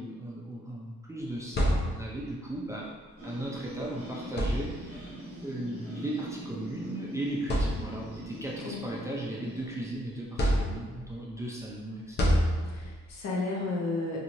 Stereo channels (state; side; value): normal; both; correlation 0.74